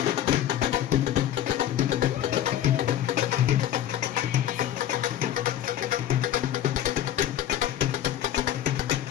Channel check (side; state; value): right; quieter; 11.7 dB